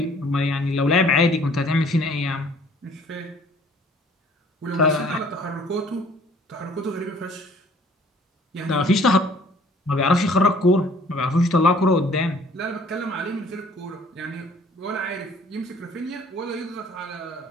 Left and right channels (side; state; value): both; normal; correlation 0.55